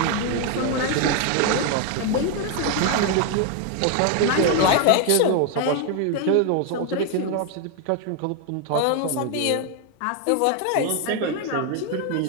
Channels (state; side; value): different; both; correlation 0.00